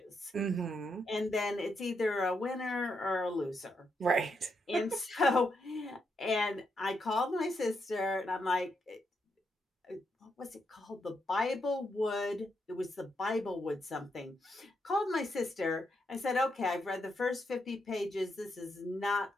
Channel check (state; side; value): normal; both; correlation 0.81